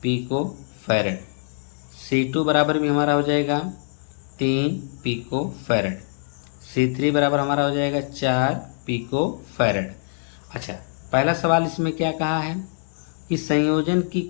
पिको फैराड, C2 बराबर भी हमारा हो जाएगा 3 पिको फैराड, C3 बराबर हमारा हो जाएगा 4 पिको फैराड। अच्छा, पहला सवाल इसमें क्या कहा है कि संयोजन की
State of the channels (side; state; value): right; silent; digital silence